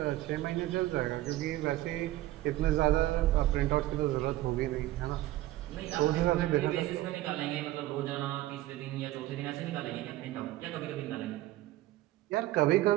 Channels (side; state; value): left; quieter; 16.0 dB